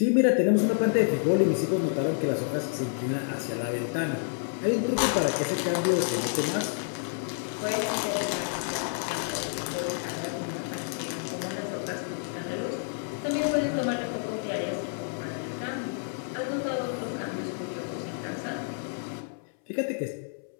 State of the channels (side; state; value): right; silent; 59 dB below the other